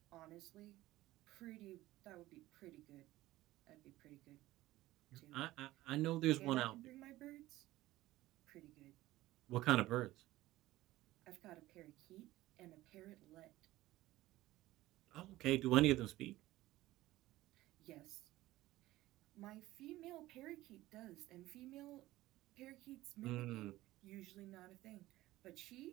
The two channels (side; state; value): left; quieter; 16.7 dB